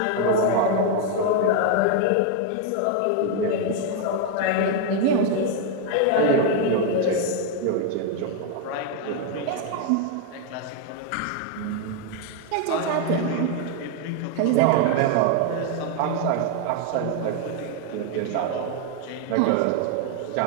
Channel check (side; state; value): both; different; correlation 0.01